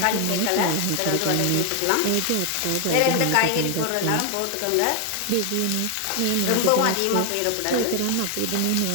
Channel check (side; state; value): both; different; correlation 0.00